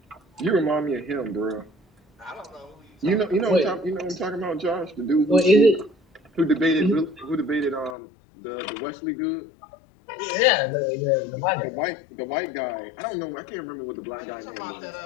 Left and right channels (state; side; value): drops out; right; at 8.0 s